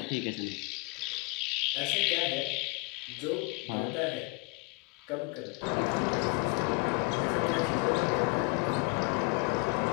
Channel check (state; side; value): quieter; right; 28.1 dB